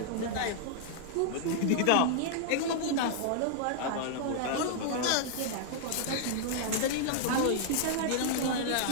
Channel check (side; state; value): both; different; correlation -0.01